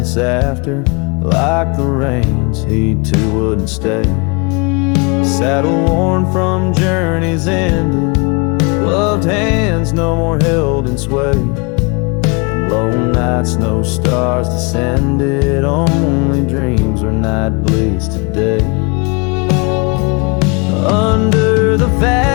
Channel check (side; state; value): right; quieter; 30.9 dB